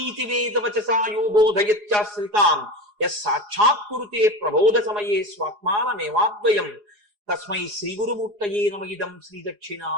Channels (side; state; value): left; late; 4.8 ms